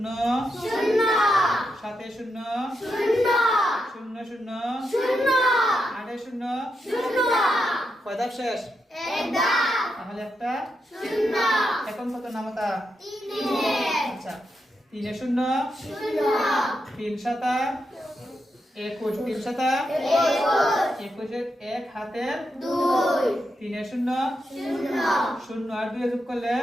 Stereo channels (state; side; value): normal; both; correlation 0.84